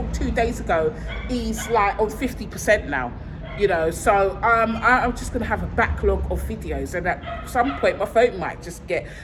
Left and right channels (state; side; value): identical; both; correlation 1.00